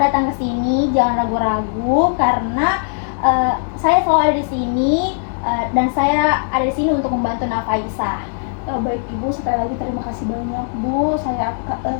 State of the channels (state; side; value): silent; right; digital silence